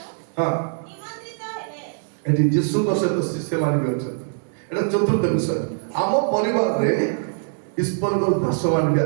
ଏଠି ଯୀଶୁଙ୍କ ସହିତ ଶିଷ୍ୟମାନେ ବି ଅଛନ୍ତି ଏଟା ଚତୁର୍ଥ ବିଷୟ ଆମ ପରିବାରରେ ଈଶ୍ୱରଙ୍କର ଦାସମାନେ ବି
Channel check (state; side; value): silent; left; digital silence